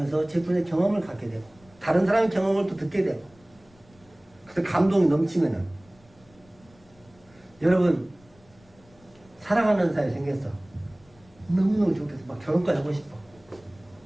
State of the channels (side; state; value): left; noise; rumble, 29 dB below the sound